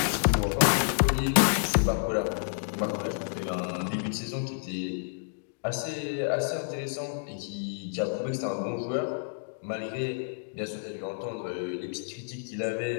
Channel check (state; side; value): silent; right; digital silence